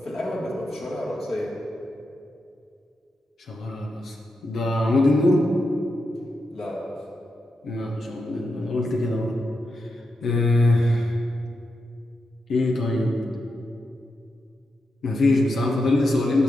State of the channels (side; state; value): both; normal; correlation 0.87